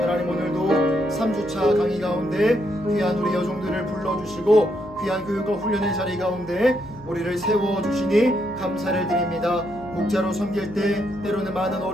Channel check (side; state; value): left; noise; hum, 20 dB below the sound